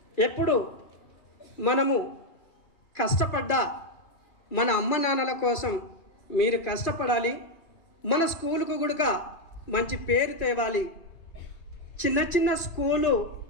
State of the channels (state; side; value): late; right; 2.8 ms